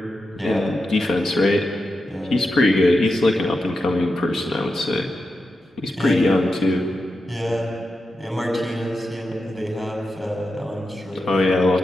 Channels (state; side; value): normal; both; correlation 0.88